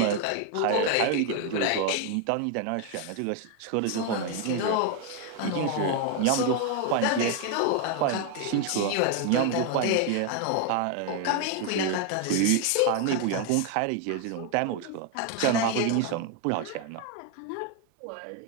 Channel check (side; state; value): both; different; correlation 0.01